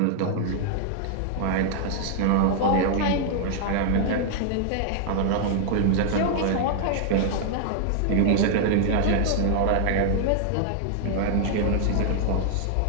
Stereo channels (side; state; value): both; different; correlation 0.00